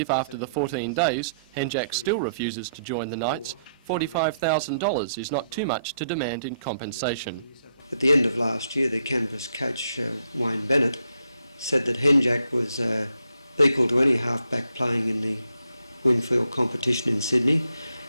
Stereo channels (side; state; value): both; inverted; correlation -0.75